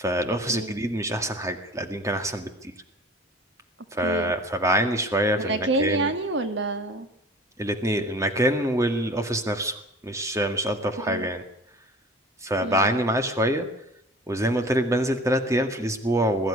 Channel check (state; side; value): normal; both; correlation 0.42